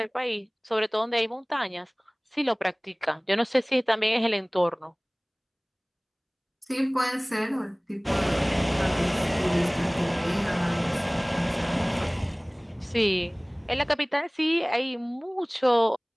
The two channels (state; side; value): identical; both; correlation 1.00